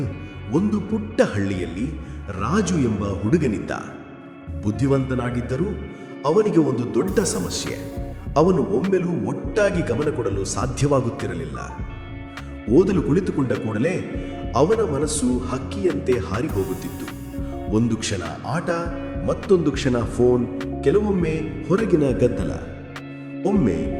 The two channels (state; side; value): identical; both; correlation 1.00